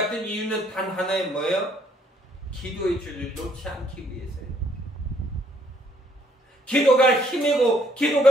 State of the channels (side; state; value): both; normal; correlation 0.67